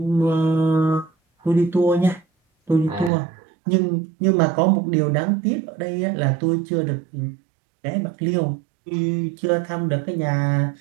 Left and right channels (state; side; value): drops out; left; at 3.1 s